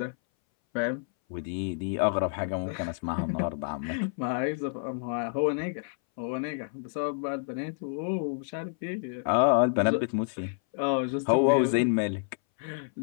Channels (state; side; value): silent; right; 59 dB below the other